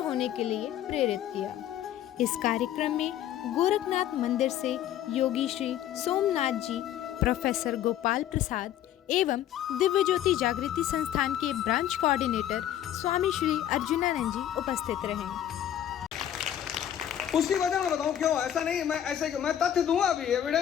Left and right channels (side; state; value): right; quieter; 11.1 dB